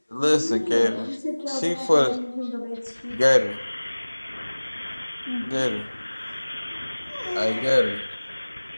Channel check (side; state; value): both; inverted; correlation -1.00